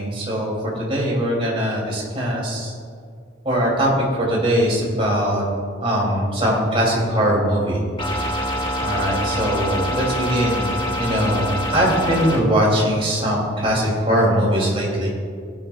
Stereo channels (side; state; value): both; normal; correlation 0.42